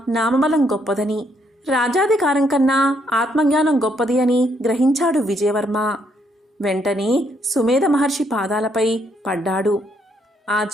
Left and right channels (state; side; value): normal; both; correlation 0.72